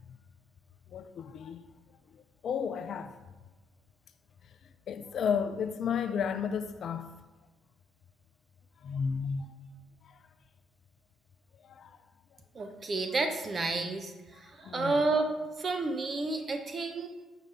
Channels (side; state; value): both; normal; correlation 0.74